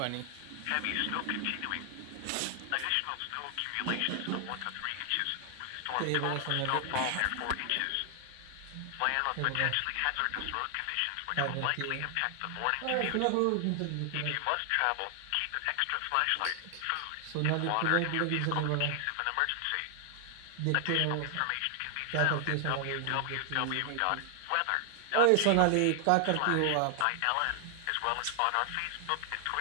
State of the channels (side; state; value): both; different; correlation 0.00